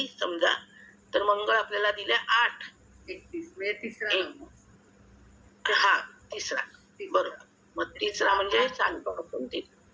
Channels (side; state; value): both; identical; correlation 1.00